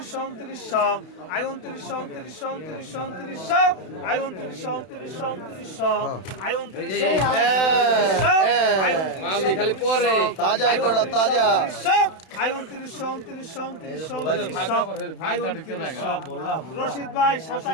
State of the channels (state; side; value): late; right; 31 ms